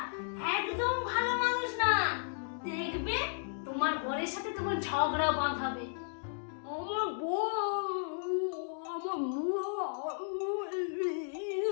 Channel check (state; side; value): silent; right; digital silence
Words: একদম ভালো মানুষ না, দেখবে তোমার বরের সাথে তোমার ঝগড়া বাঁধাবে। আমার